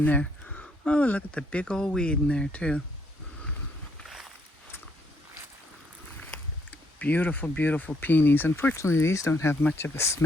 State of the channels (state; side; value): normal; both; correlation 0.71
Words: there. Oh, look at the big old weed in there too. Beautiful, beautiful peonies. Unfortunately, these don't have much of a